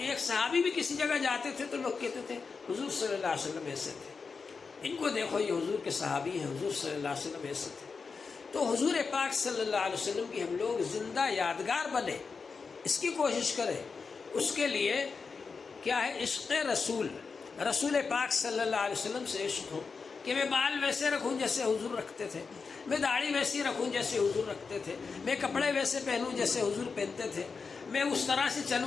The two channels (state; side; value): quieter; right; 5.0 dB